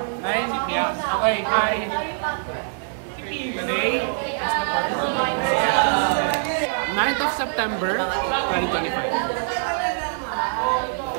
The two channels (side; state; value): left; silent; 63 dB below the other